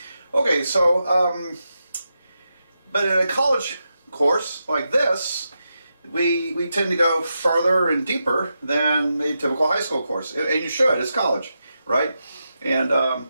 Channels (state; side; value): inverted; both; correlation -0.87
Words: Okay, so but in a college course like this, we tend to go further and deeper than a typical high school course, and you should. It's college, right? And